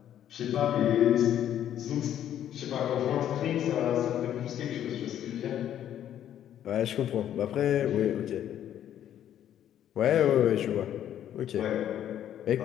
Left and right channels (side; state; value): right; quieter; 10.7 dB